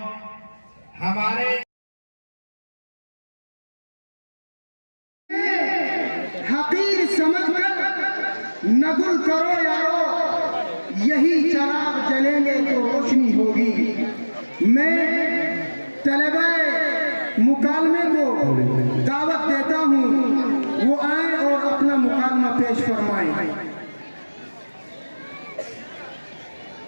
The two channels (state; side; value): inverted; both; correlation -1.00